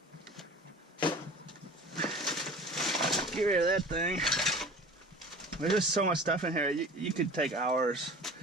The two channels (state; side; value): normal; both; correlation 0.41